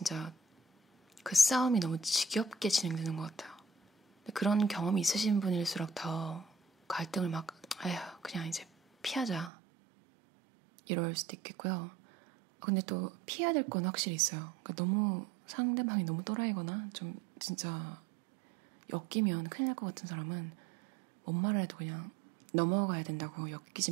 그 싸움이 너무 지겹게 진행되는 것 같아요. 그런 경험이 있으신 분일수록 더 갈등을 막 아휴 그냥 이제 피하자 이럴 수도 있겠고요. 근데 또 피해야 될 건 확실히 있어요. 그러니까 너무 상대방이 너무 또라이거나 좀 진짜 엮이면 큰일 날 것 같은 사람은 뭔 말을 해도 그냥 넘어가야 된다고, 엮이지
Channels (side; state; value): left; drops out; at 9.5 s